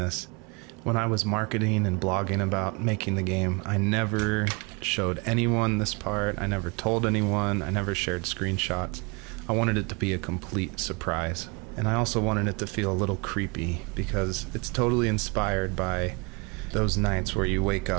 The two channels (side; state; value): left; quieter; 29.8 dB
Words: When I was marketing and blogging about making the game, I never showed anyone this part. I never told anyone. I never shared screenshots. I wanted it to be a complete surprise. And I also wanted it to feel a little creepy because it's totally inspired by those nights where you wake